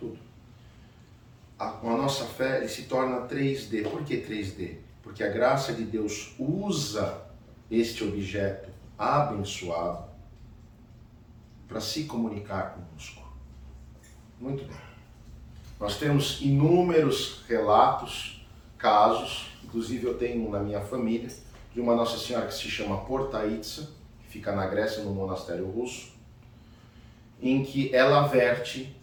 Com a nossa fé, ele se torna 3D. Por que 3D? Porque a graça de Deus usa este objeto abençoado para se comunicar conosco. Muito bem. Nós temos inúmeros relatos, casos, inclusive eu tenho na minha família, de uma Nossa Senhora que se chama Portaitsa, que fica na Grécia, no monastério russo, em que ela verte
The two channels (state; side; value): identical; both; correlation 1.00